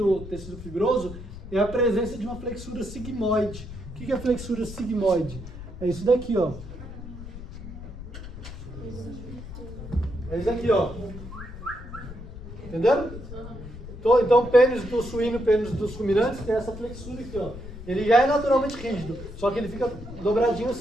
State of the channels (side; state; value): left; noise; rumble, 12 dB below the sound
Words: tecido fibroso, é a presença de uma flexura sigmoide. O que é flexura sigmoide? É isso daqui, ó. É isso aqui, ó. Entenderam? Então, o pênis do suíno e o pênis dos ruminantes tem essa flexura aqui, ó. Ele já é naturalmente rígido, só que ele fica dobradinho